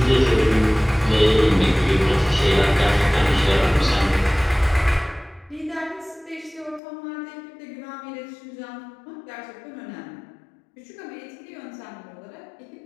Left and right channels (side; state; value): right; drops out; at 6.8 s